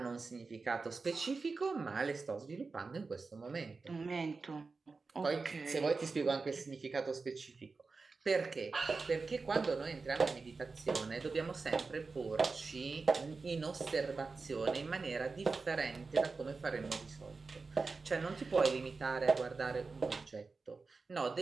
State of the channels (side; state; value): left; quieter; 4.2 dB